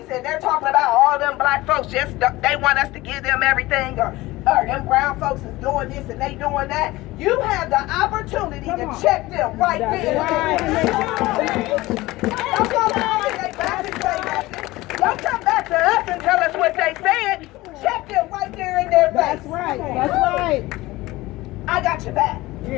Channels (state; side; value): quieter; right; 19.2 dB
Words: and they're talking about all them black folks, just they want us to give them everything, or them brown folks is doing this and they doing that, you have the opportunity to check them right there. Don't go behind their back and say nothing. Don't come back to us and tell us what they said. Check them right there in their face. That's right. I got your back.